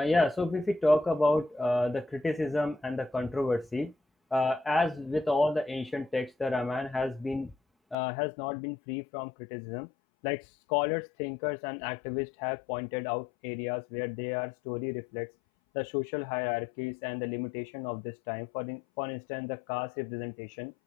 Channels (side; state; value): right; drops out; at 8.0 s